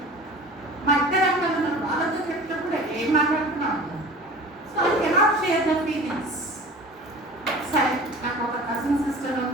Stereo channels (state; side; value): normal; both; correlation 0.41